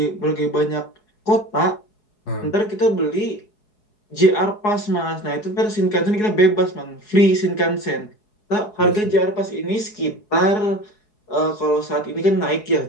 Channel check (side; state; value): right; late; 4.8 ms